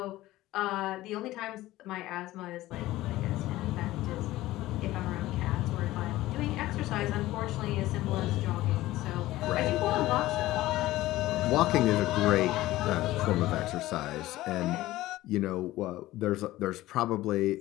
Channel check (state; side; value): quieter; right; 16.6 dB